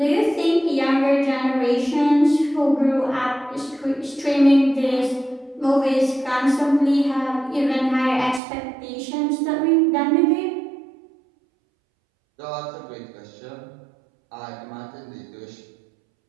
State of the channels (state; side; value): drops out; left; at 8.4 s